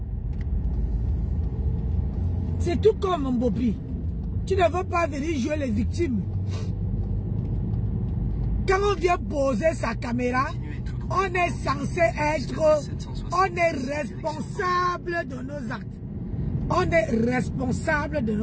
C'est tout comme, mon Bopi. Tu ne veux pas venir jouer les victimes. Quand on vient poser sa caméra, on est censé être... On est responsable de nos actes. On est responsable de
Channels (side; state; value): both; identical; correlation 1.00